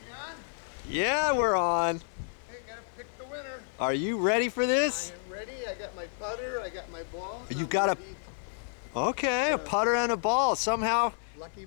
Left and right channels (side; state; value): right; silent; 58 dB below the other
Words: Yeah, we're on. Hey, gotta pick the winner. Are you ready for this? I am ready. I got my putter. I got my ball. You got a putter and a ball. Somehow lucky